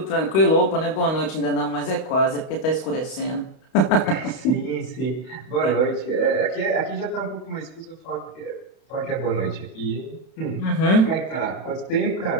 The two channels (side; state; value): right; late; 31 ms